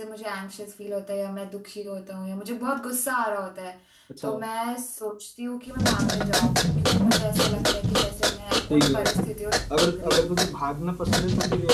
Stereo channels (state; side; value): identical; both; correlation 1.00